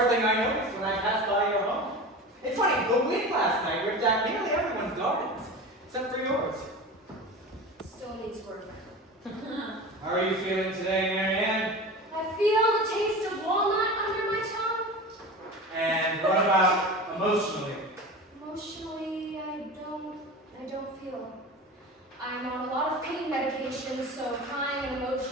thing I noticed when I passed by your home. It's funny, the wind last night ripped out nearly everyone's gardens, except for yours. Still needs work. How are you feeling today, Marianne? I feel the taste of walnut under my tongue. And what about emotionally? Emotionally, I don't feel. I'm on a lot of pain medications, so crying and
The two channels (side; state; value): both; normal; correlation 0.32